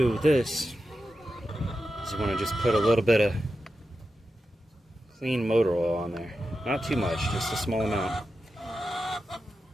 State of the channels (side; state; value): both; normal; correlation 0.90